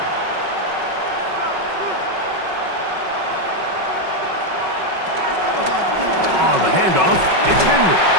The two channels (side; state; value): left; late; 5.4 ms